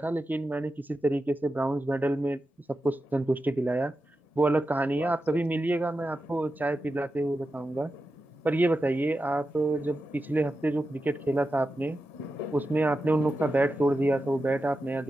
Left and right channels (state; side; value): normal; both; correlation 0.91